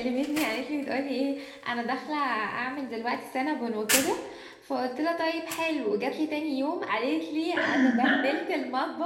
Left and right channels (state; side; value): identical; both; correlation 1.00